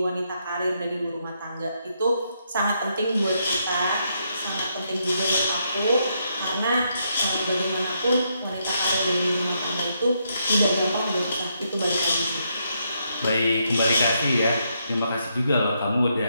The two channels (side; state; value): both; inverted; correlation -0.78